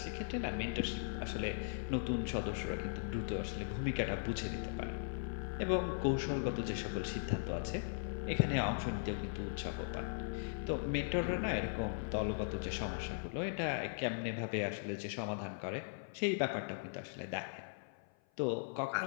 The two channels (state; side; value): silent; right; 52 dB below the other